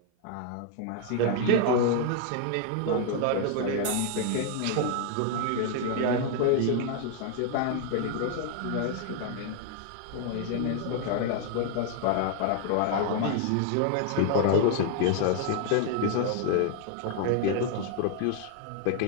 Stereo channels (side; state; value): both; different; correlation 0.00